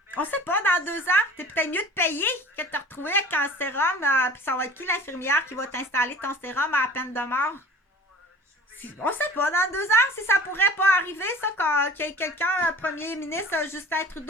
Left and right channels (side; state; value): both; normal; correlation 0.44